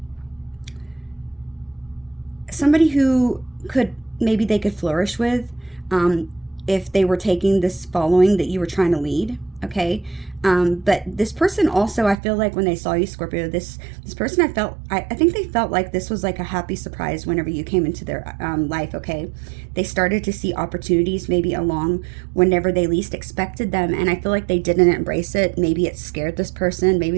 somebody who maybe they could flourish with if they were taking this following that you were trying to lead, okay? But this person also, I feel like when they saw you, Scorpio, this person, I think they felt like this was like a happy surprise whenever you came into their life, okay? They started to see opportunities maybe along whenever they least expected them, and I feel like they didn't embrace it. Maybe it scared this person.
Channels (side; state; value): left; drops out; at 12.2 s